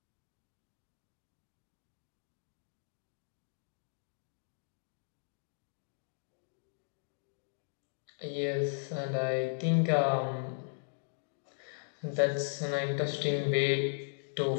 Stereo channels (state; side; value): silent; right; digital silence